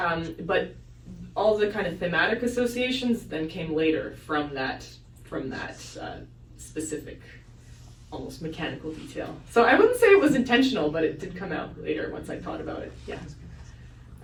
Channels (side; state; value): both; identical; correlation 1.00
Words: but all the kind of thematic associations then came later from that specific almost mechanical detail. So I wouldn't say it was intentional, but it did come out later once I thought about it. Yeah.